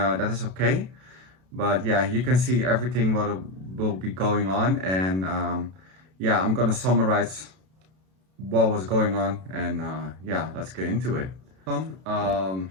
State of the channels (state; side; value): late; left; 32 ms